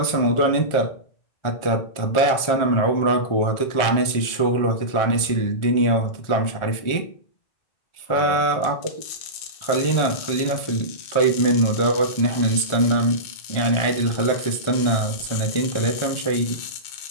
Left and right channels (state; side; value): late; right; 1.4 ms